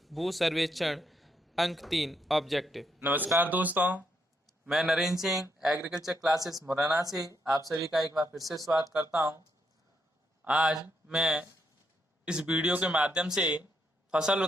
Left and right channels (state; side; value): normal; both; correlation 0.77